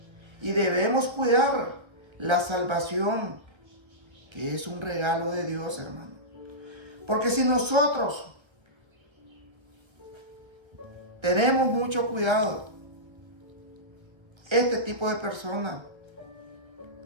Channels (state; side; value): late; left; 1.3 ms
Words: y debemos cuidar la salvación, que es un regalo de Dios, hermano. Porque si nosotros tenemos mucho cuidado, este tipo de personas,